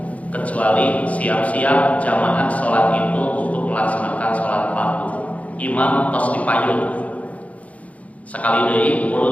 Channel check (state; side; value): late; right; 0.067 ms